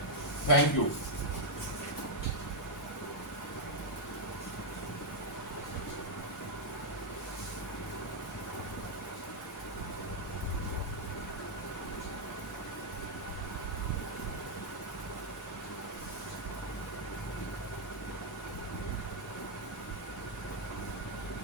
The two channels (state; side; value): normal; both; correlation -0.02